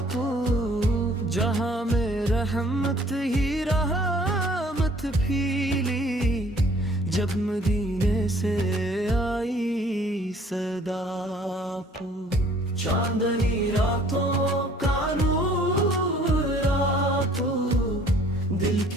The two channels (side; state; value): both; normal; correlation 0.57